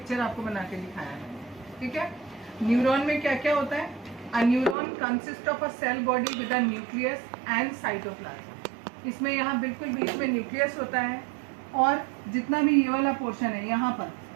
आपको बना के दिखाया है। ठीक है, न्यूरॉन में क्या क्या होता है। A neuron consist of a cell body with a nucleus and cytoplasm. इसमें यहाँ बिल्कुल बीच में न्यूक्लियस होता है और जितना भी ये वाला पोर्शन है यहाँ पर,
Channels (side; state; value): left; drops out; at 4.8 s